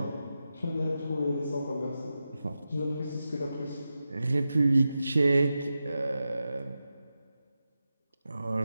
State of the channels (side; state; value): both; inverted; correlation -0.91